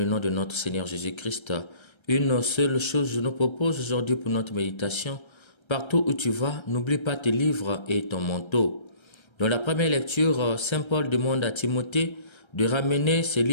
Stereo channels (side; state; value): right; late; 1.3 ms